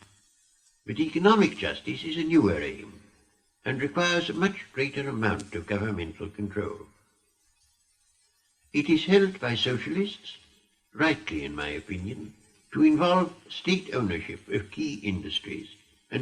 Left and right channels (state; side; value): identical; both; correlation 1.00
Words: But economic justice is a newer aim and requires a much greater amount of governmental control. It is held by socialists, rightly in my opinion, to involve state ownership of key industries